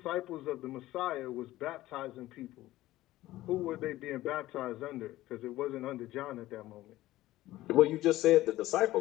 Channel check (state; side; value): quieter; right; 16.2 dB